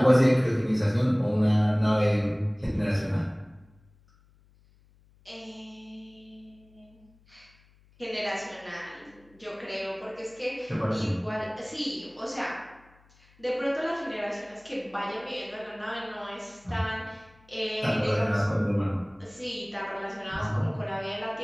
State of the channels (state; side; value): noise; left; hum, 30 dB below the sound